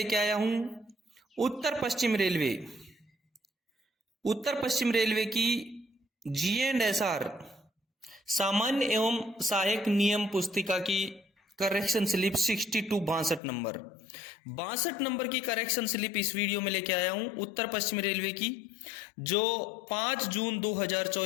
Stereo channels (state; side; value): drops out; right; at 13.4 s